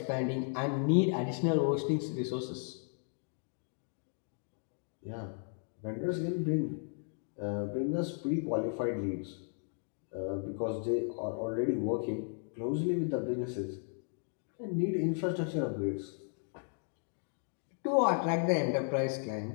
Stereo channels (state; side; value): silent; right; 54 dB below the other